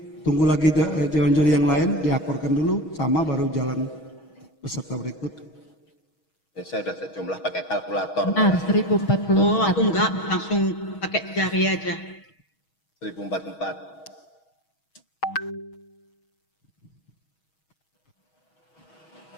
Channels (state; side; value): late; right; 6.3 ms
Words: tunggu lagi Dewan Juri yang lain diakorkan dulu sama baru jalan peserta berikut. Ya, saya sudah sejumlah pakai kalkulator. Benar, 1044. Oh, aku enggak, langsung pakai jari aja. 1044.